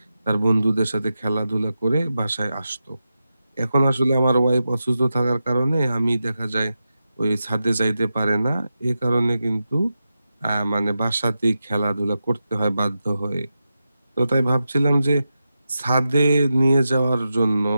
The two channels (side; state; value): both; inverted; correlation -0.90